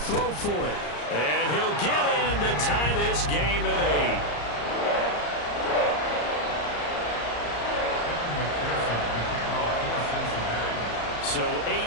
for it. And he'll get in to tie this game at 8. So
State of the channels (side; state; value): right; late; 34 ms